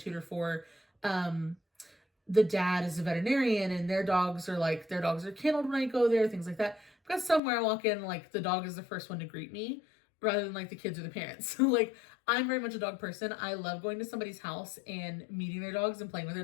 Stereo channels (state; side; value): drops out; right; at 7.4 s